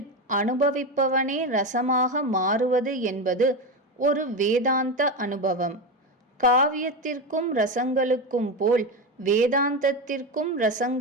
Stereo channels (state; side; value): normal; both; correlation 0.17